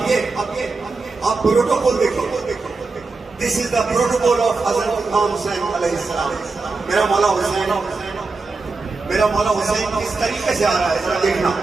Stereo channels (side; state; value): left; quieter; 3.9 dB